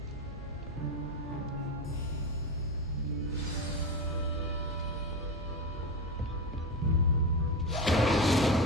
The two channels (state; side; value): normal; both; correlation 0.20